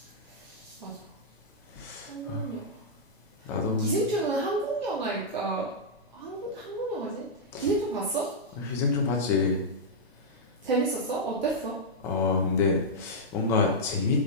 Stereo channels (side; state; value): both; normal; correlation -0.07